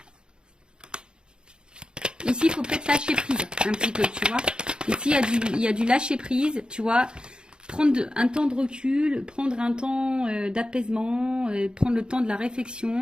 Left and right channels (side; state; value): left; late; 0.049 ms